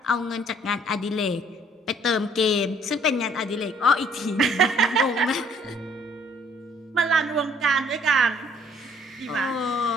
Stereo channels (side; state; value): both; normal; correlation 0.62